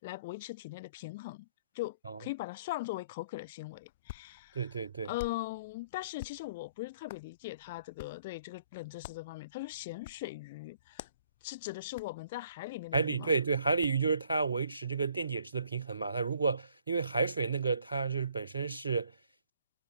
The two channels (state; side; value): inverted; both; correlation -0.62